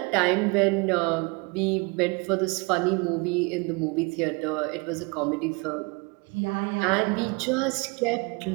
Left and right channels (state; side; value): quieter; left; 28.8 dB